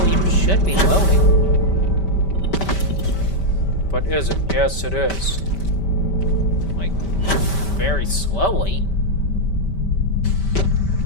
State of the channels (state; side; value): late; right; 5.1 ms